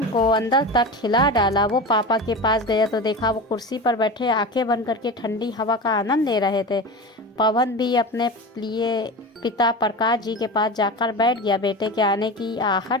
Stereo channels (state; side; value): normal; both; correlation 0.27